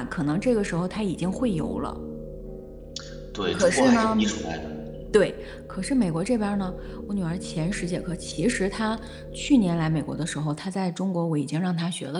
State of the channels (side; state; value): both; identical; correlation 1.00